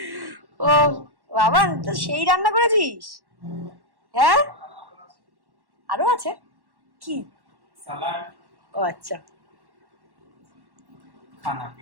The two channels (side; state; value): left; late; 1.1 ms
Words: ও বাবা, তো সেই রান্না করেছিস? হ্যাঁ, আরো আছে কি? সালাড। ও আচ্ছা, খানা